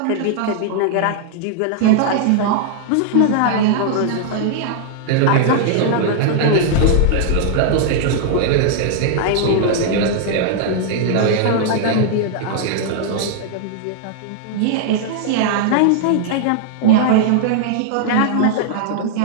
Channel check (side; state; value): both; different; correlation -0.01